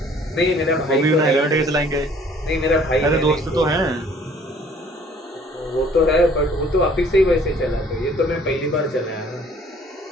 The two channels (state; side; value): normal; both; correlation 0.57